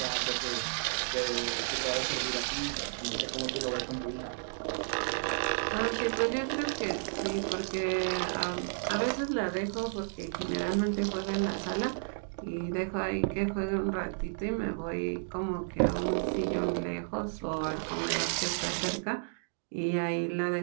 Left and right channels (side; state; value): left; silent; digital silence